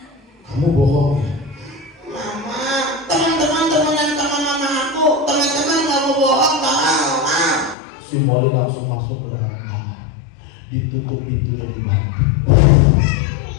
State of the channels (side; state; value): right; drops out; at 7.8 s